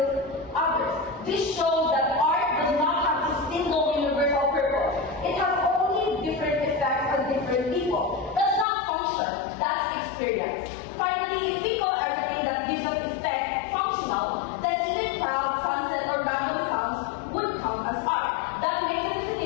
others. This shows that art does not have a single universal purpose. It has only different effects on different people. That's not function, that's experience. Finally, if we call everything that gives us effect functional, then even clouds, sunset, or random sounds would count as art. That makes the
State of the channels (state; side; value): drops out; right; at 8.7 s